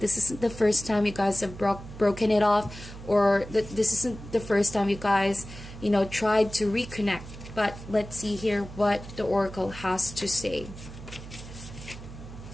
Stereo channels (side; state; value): right; noise; hum, 14 dB below the sound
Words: isn't the first time you guys have broken it off, or this isn't the first time you guys, you know, tried to reconnect. But let's see here what the oracle has to say.